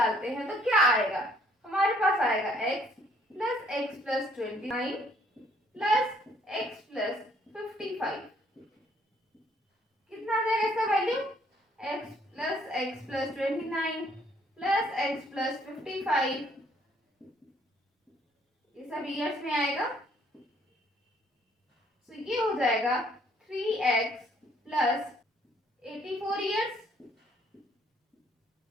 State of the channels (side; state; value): both; normal; correlation 0.64